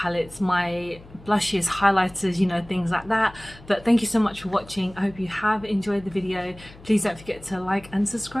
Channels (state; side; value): noise; left; hum, 21 dB below the sound